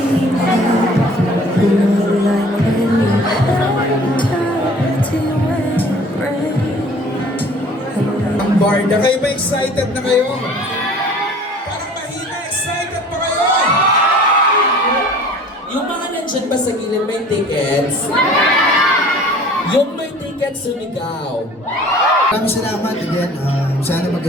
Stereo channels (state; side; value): normal; both; correlation 0.49